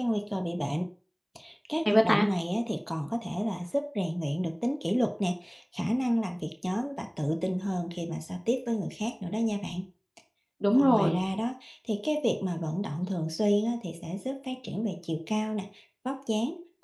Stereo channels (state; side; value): identical; both; correlation 1.00